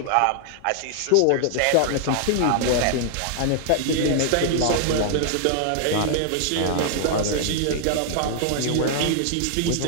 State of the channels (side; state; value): both; different; correlation 0.00